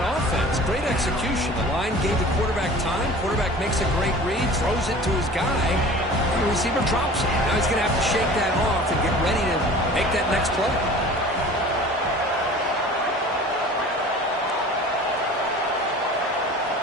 offense. Great execution. The line gave the quarterback time. Quarterback makes a great read, throws it to his guy. The receiver drops it. Now he's going to have to shake that off and get ready to make that next play.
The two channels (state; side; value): normal; both; correlation 0.42